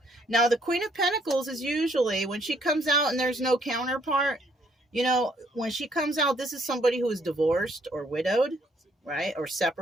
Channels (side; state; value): both; normal; correlation 0.67